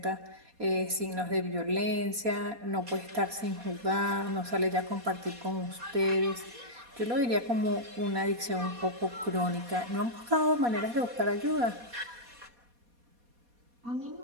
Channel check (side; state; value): left; late; 4.2 ms